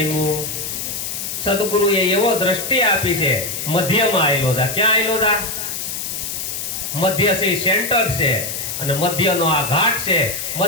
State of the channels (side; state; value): left; noise; hiss, 5 dB below the sound